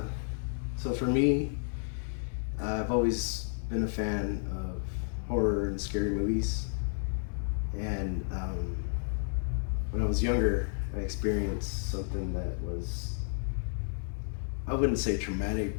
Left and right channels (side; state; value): right; silent; digital silence